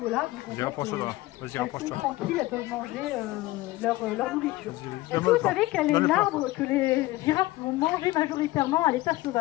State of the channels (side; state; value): right; quieter; 18.3 dB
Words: Vas-y, rapproche-toi là. Vas-y, rapproche-toi. Elles sont tranquilles, elles peuvent manger leur nourriture. Est-ce que vous savez quel est l'arbre que les girafes vont manger majoritairement à l'état